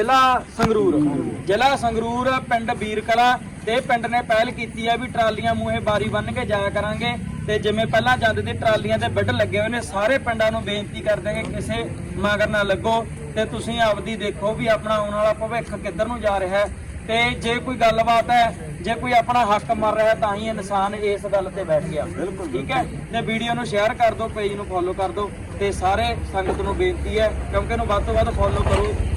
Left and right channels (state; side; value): identical; both; correlation 1.00